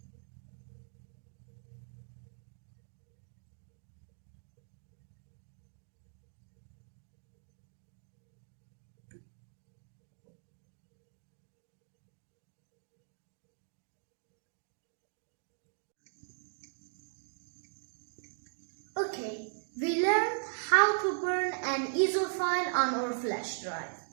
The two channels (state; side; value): silent; left; digital silence